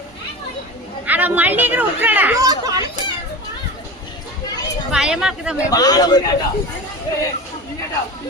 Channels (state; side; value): normal; both; correlation 0.30